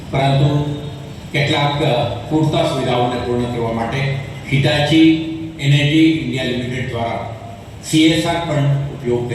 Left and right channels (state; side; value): identical; both; correlation 1.00